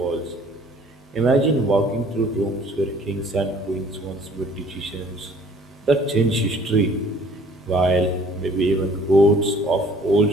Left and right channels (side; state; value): both; normal; correlation 0.54